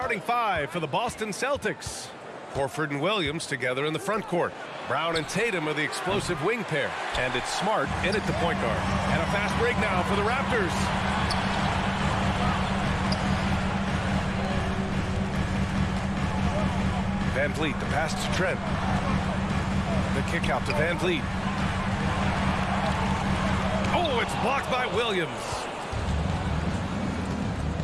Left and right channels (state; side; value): identical; both; correlation 1.00